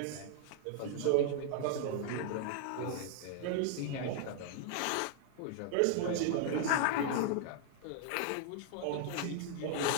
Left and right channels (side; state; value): both; different; correlation 0.00